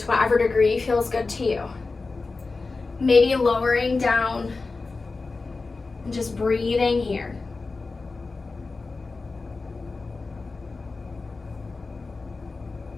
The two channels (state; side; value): quieter; right; 3.9 dB